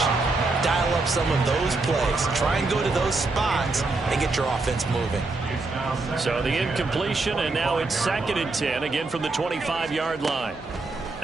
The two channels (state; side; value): quieter; left; 3.4 dB